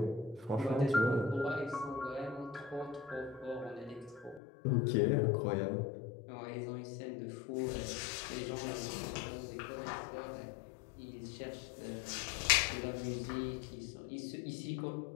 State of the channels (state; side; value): drops out; right; at 4.4 s